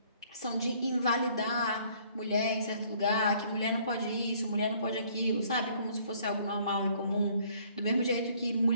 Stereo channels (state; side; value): inverted; both; correlation -0.61